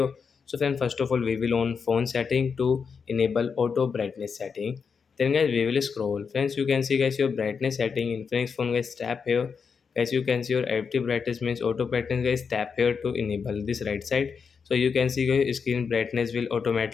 So friend, first of all we will on phone setting to enable auto brightness setting. Then guys we will scroll. Friends, you can see guys your brightness setting in Infinix phone. Guys, tap here. As you can see your active brightness means auto brightness. Guys, tap here to enable this right side. So you can see guys screen brightness will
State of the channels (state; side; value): quieter; right; 5.9 dB